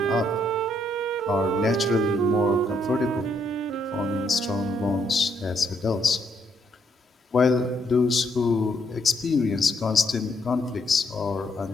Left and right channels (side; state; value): both; normal; correlation 0.73